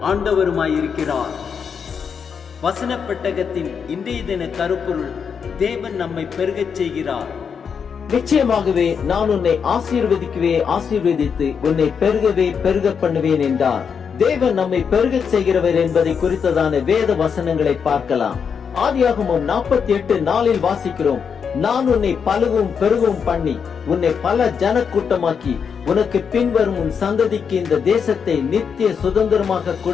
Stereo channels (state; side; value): quieter; right; 6.6 dB